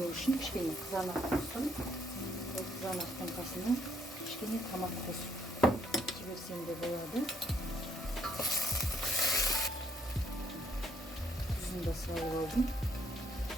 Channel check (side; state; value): both; normal; correlation 0.69